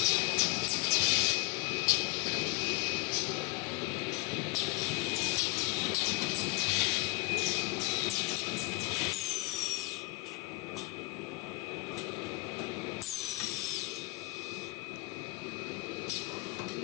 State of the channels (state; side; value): quieter; right; 25.3 dB